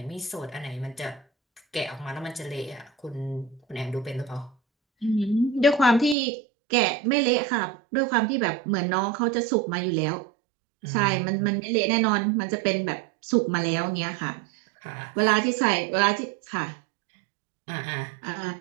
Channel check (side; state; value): left; drops out; at 6.2 s